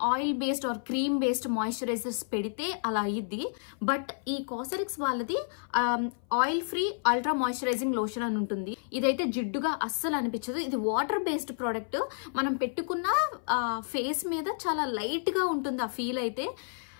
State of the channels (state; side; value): silent; right; 58 dB below the other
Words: oil based or cream based moisturisers పెడితే అలా అయ్యిద్ది. బట్ ఈ కాసరెక్స్ వాళ్ళది oil free ultra moisturising lotion అని ఉంటుంది. ఇదైతే జిడ్డుగా అస్సలు అనిపించదు. ఇది వాటర్ బేస్డ్ ప్రోడక్ట్. మనం పెట్టుకున్న ఫేస్ మీద చాలా లైట్ గా ఉంటుంది ఆ ఫీల్. అయితే